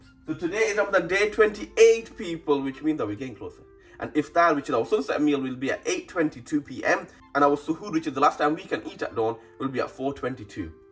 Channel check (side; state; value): both; identical; correlation 1.00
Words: So today is Ramadan day 28, people, which means that we're getting closer. And iftar, which is our sunset meal, will be at 8:22 p.m. And our suhoor, which is the last time we can eat at dawn, will be at 4:22.